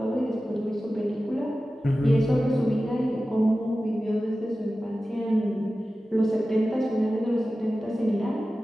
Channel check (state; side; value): normal; both; correlation 0.95